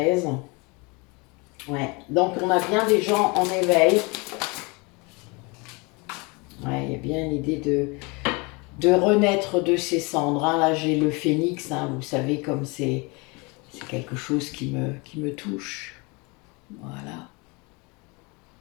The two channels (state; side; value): quieter; right; 28.3 dB